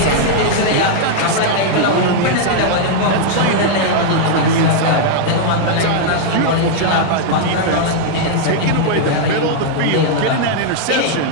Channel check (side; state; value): both; different; correlation -0.01